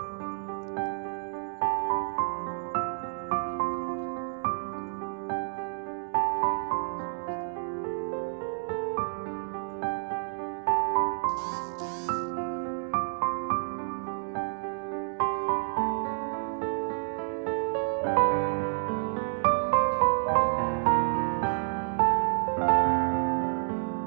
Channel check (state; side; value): silent; left; 58 dB below the other